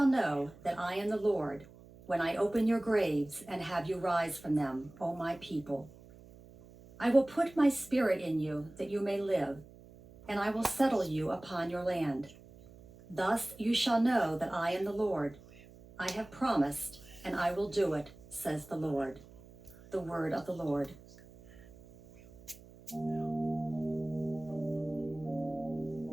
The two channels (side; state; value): right; noise; hum, 21 dB below the sound